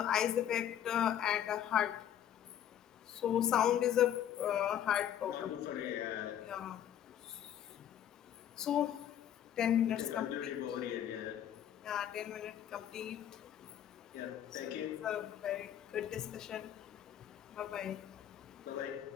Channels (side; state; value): right; quieter; 10.5 dB